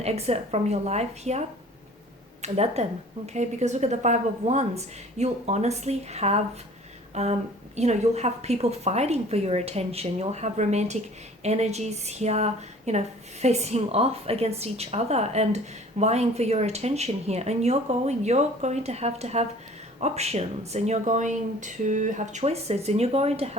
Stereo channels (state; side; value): normal; both; correlation 0.49